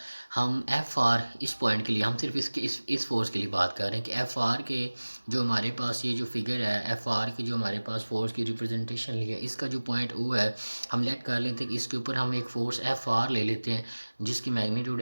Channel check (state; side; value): inverted; both; correlation -1.00